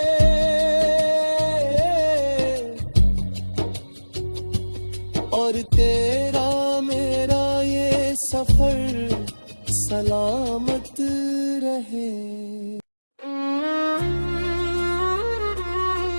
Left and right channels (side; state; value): both; inverted; correlation -1.00